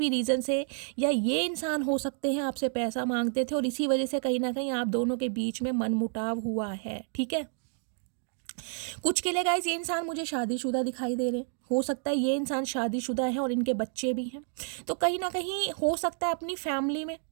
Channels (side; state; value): left; silent; 58 dB below the other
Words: रीज़न से, या ये इंसान हो सकते हैं आपसे पैसा मांगते थे और इसी वजह से कहीं ना कहीं आप दोनों के बीच में मनमुटाव हुआ है। ठीक है, कुछ के लिए गाइस ये इंसान मुझे शादीशुदा दिखाई दे रहे हैं। हो सकता है ये इंसान शादीशुदा है और इनके बच्चे भी हैं। तो कहीं ना कहीं हो सकता है अपनी फैमिली में